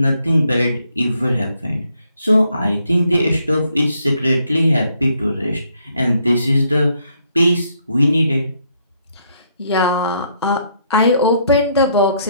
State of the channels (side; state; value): both; inverted; correlation -0.71